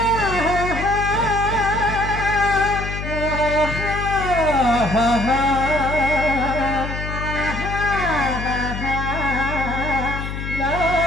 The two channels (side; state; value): left; noise; hum, 6 dB below the sound